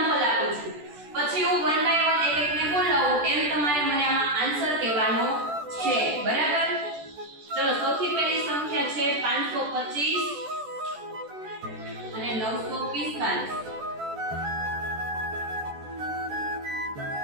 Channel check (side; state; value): left; late; 14 ms